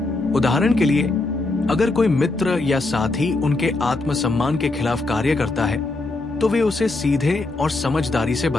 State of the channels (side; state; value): right; quieter; 3.1 dB